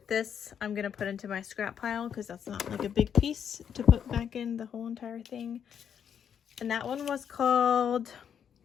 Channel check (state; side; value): quieter; right; 8.2 dB